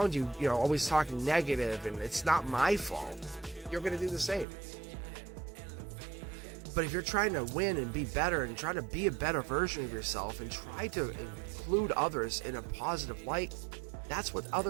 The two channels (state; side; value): drops out; left; at 4.5 s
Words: you, always talking negative and it's not my fault, you're going to do the same. But if you're trying to win and be better and try to be a better version of yourself and try to include others in a positive light, that's what